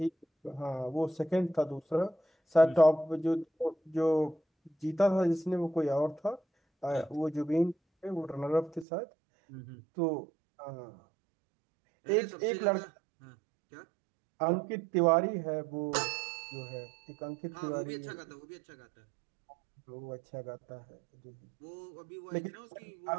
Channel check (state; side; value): drops out; left; at 8.8 s